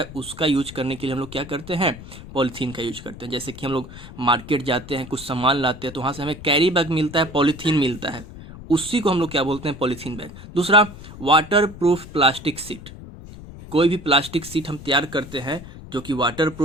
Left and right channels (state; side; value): noise; left; rumble, 15 dB below the sound